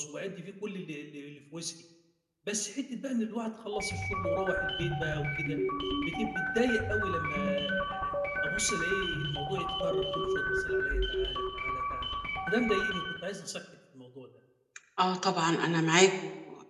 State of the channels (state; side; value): identical; both; correlation 1.00